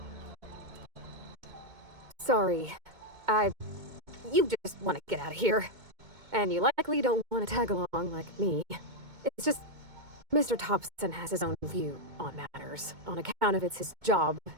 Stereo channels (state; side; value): late; left; 2.2 ms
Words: Sorry. You just want to get out of here. And you likely don't want to tag along like me. It's just, Mr. Thompson has his own view on matters, on account of it's his job